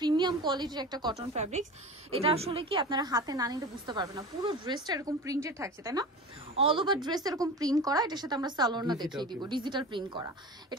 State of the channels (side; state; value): both; normal; correlation 0.33